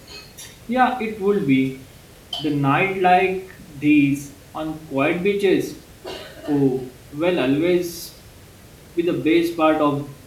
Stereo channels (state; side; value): identical; both; correlation 1.00